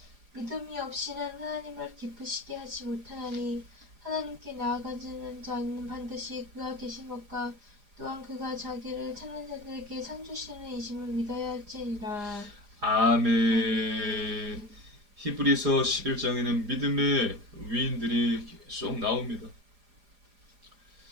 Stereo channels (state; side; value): late; left; 4.9 ms